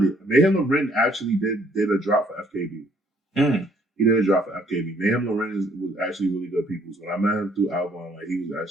it. Mayhem Loren actually did a drop for FKB. He did a drop for FKB. Mayhem Loren was actually really good people. So when I met him through Album, like he was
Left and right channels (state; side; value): normal; both; correlation 0.64